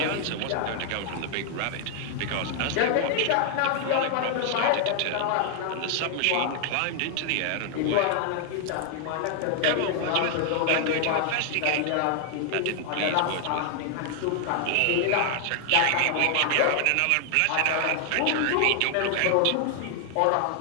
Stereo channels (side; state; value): both; different; correlation 0.00